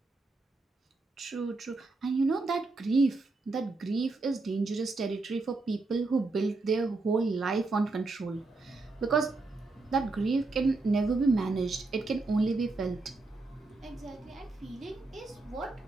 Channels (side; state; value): left; quieter; 3.5 dB